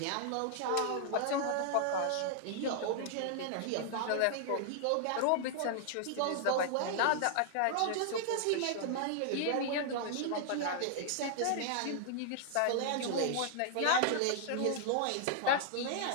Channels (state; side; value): different; both; correlation 0.00